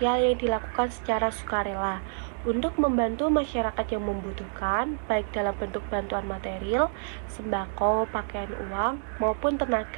yang dilakukan secara sukarela untuk membantu masyarakat yang membutuhkan, baik dalam bentuk bantuan material, sembako, pakaian, uang, maupun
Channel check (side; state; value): left; silent; digital silence